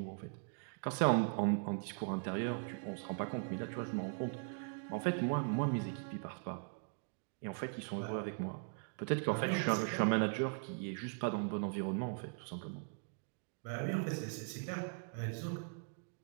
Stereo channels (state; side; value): silent; left; 51 dB below the other